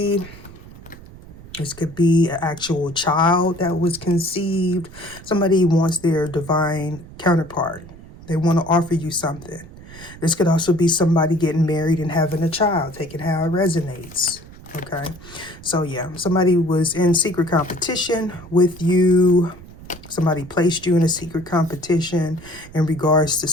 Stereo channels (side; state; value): right; noise; rumble, 18 dB below the sound